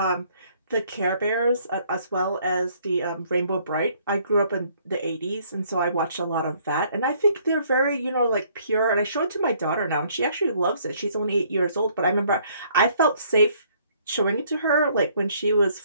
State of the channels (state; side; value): inverted; both; correlation -0.63